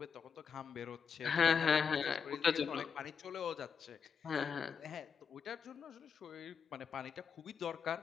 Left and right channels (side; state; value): right; quieter; 6.5 dB